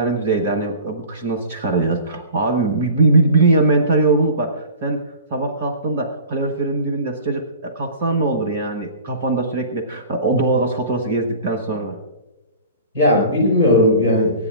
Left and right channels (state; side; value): inverted; both; correlation -0.41